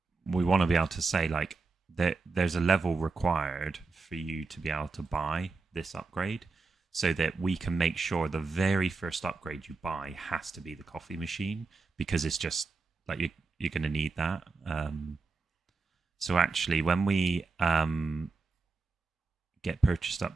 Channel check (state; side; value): quieter; left; 4.1 dB